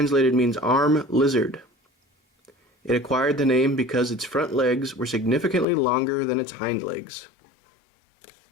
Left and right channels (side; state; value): right; drops out; at 5.7 s